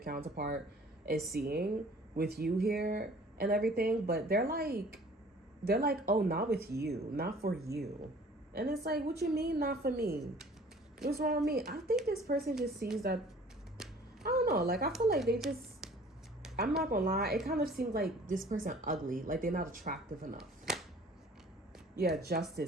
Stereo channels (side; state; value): both; normal; correlation 0.51